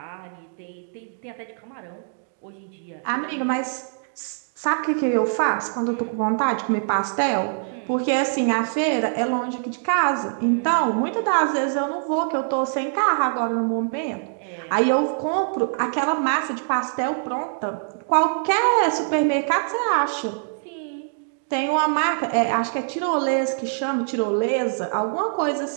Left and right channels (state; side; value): silent; left; digital silence